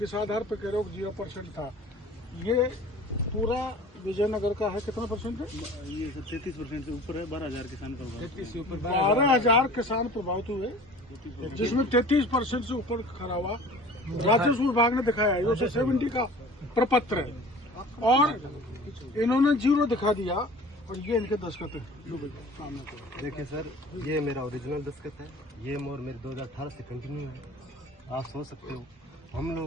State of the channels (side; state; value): both; normal; correlation 0.44